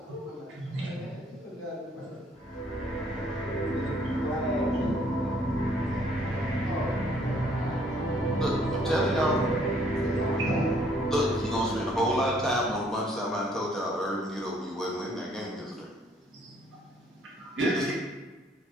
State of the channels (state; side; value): normal; both; correlation 0.63